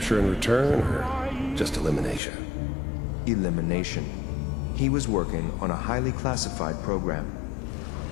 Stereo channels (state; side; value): drops out; right; at 2.2 s